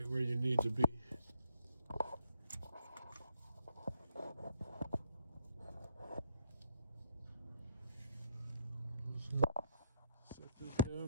where you need to be. Set this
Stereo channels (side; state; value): both; inverted; correlation -0.74